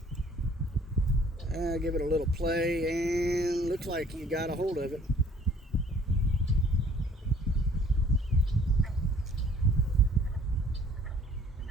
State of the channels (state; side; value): normal; both; correlation 0.56